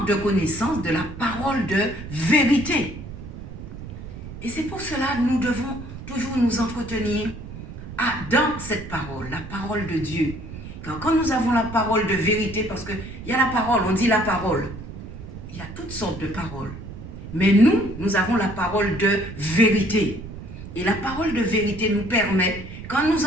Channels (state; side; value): noise; right; rumble, 12 dB below the sound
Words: de connaissance de la parole de vérité. Et c'est pour cela que nous devons toujours nous entretenir dans cette parole, la parole de Dieu. Car quand nous avons la parole de vérité, parce qu'il y a la parole, on dit la parole. Il y a toutes sortes de paroles. Mais nous avons la parole de vérité. Et la parole de vérité nous permet, quand nous